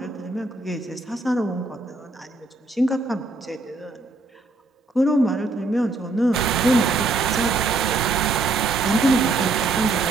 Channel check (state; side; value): quieter; left; 3.3 dB